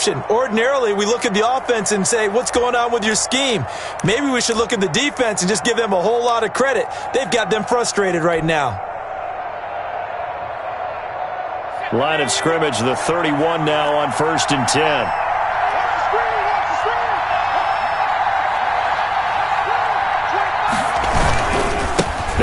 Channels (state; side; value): identical; both; correlation 1.00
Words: Ordinarily, we look at the offense and say, what's going on with your scheme? Maybe we should look at the defense and just give them a whole lot of credit. They've got them frustrated right now. Line of scrimmage, the 31 now on 1st and 10.